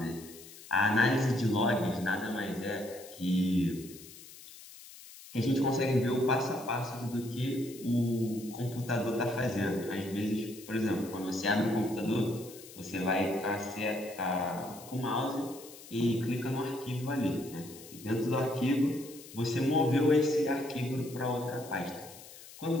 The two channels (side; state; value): left; noise; hiss, 17 dB below the sound